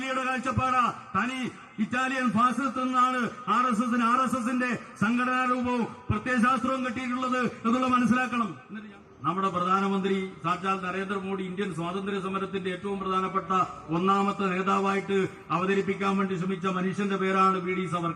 കാഴ്ചപ്പാടാ. തനി ഇറ്റാലിയൻ ഫാസിസ്റ്റ് എന്നാണ് RSSന്റെ സംഘടനാ രൂപവും പ്രത്യയശാസ്ത്രവും കിട്ടിയിട്ടുള്ളത് എന്നുള്ള മനസ്സിലാക്കണം. നമ്മുടെ പ്രധാനമന്ത്രി സാക്ഷാൽ നരേന്ദ്രമോദി ഇന്ത്യൻ സ്വാതന്ത്ര്യ സമരത്തിന്റെ ഏറ്റവും പ്രധാനപ്പെട്ട ഒന്നാമത്തെ നേതാവായിട്ട് അവതരിപ്പിക്കാൻ വേണ്ടി ശ്രമിച്ച മനുഷ്യന്റെ പേരാണ് VD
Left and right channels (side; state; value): both; identical; correlation 1.00